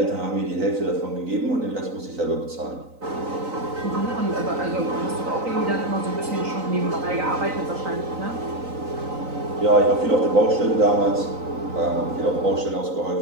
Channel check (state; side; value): late; left; 3.9 ms